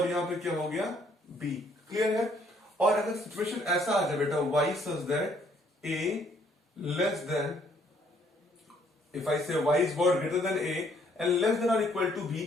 यहां पे क्या हो गया b। क्लियर है? और अगर सिचुएशन ऐसा आ जाए बेटा y such that a less than, if I से y is what greater than a and less than और इक्वल टू b,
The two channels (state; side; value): normal; both; correlation 0.65